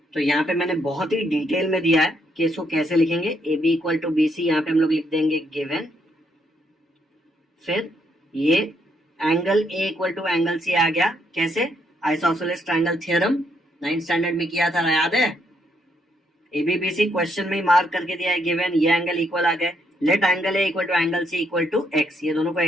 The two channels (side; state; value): both; normal; correlation 0.74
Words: तो यहाँ पे मैंने बहुत ही डिटेल में दिया है कि इसको कैसे लिखेंगे। A B equal to B C, यहाँ पे हम लोग लिख देंगे गिवन। फिर ये angle A equal to angle C आ गया, कैसे, isosceles triangle theorem 9th standard में किया था, याद है। A B B C question में मार्क करके दिया है गिवन, ये एंगल इक्वल आ गए। Let angle A equal to angle C equal to X, ये दोनों को